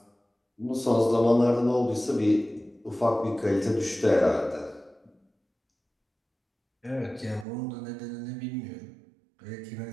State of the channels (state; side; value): drops out; left; at 7.5 s